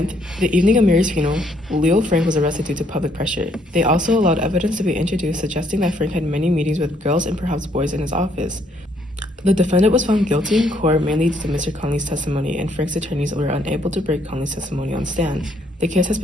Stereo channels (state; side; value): normal; both; correlation 0.69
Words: the evening of Mary's funeral, Leo Frank was arrested due to public pressure. They also allowed evidence to be introduced suggesting that Frank had many meetings with girls and perhaps boys in his office. The defendant was found guilty in court mainly due to Mr. Conley's testimony, and Frank's attorneys were unable to break Conley's testimony on stand. The case has